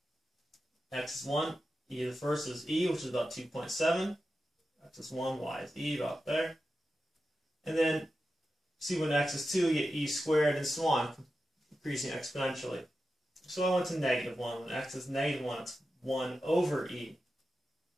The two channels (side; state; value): both; normal; correlation 0.91